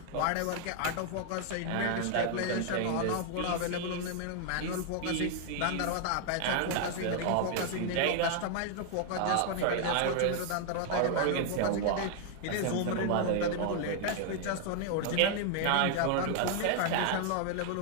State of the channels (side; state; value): both; different; correlation 0.00